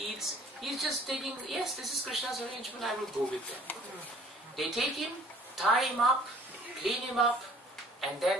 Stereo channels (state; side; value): normal; both; correlation 0.54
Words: eats. He's just taking, yes, this is Krishna's arrangement, I will go with them. They take him, tie him up, clean him up, and